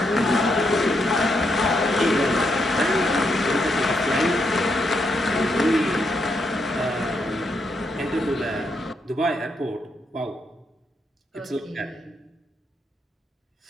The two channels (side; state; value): both; normal; correlation 0.79